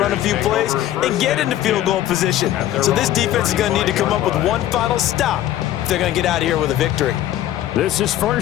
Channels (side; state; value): right; quieter; 12.9 dB